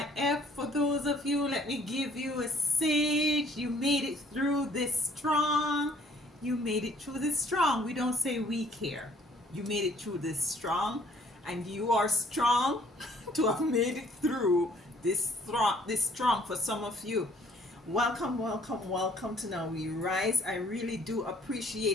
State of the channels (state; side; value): normal; both; correlation 0.60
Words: for those of you, let me give you a sage. You made it through this strong. You made it through this strong. We don't say weak here. You made it through this strong, and you are strong to have made it through this strong for some of you. Welcome, welcome, welcome to Now We Rise. I really do